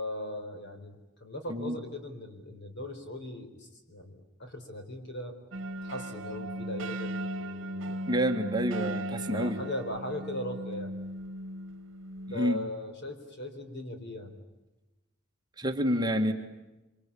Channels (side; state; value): both; normal; correlation 0.38